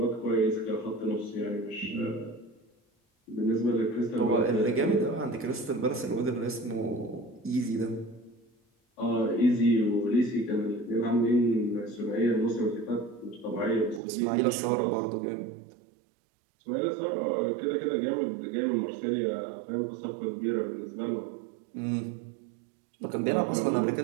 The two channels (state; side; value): drops out; left; at 14.0 s